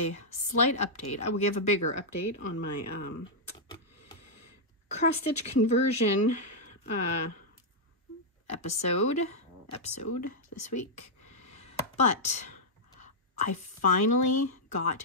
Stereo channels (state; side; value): normal; both; correlation -0.06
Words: slight update. I will give a bigger update on my cross-stitch conversion episode this week. But I finally got